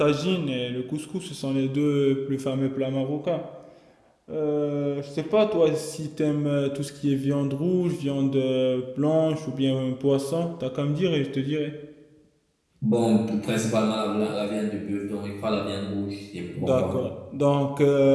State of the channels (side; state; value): both; identical; correlation 1.00